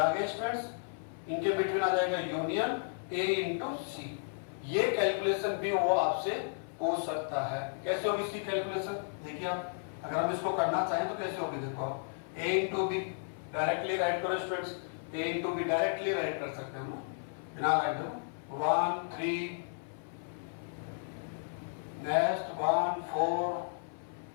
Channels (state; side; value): silent; right; 55 dB below the other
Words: आगे स्टूडेंट्स इनके बिटवीन आ जाएगा यूनियन ए इंटू सी। ये कैलकुलेशन भी वो आपसे पूछ सकता है। कैसे होगी इसकी कैलकुलेशन, देखिए आप, अगर हम इसको करना चाहें तो कैसे होगी, देखो आप, ए इंटू बी डायरेक्टली राइट करो students, A into be directly right कर सकते हैं हम बिना राइट करो, 1 3 नेक्स्ट 1 4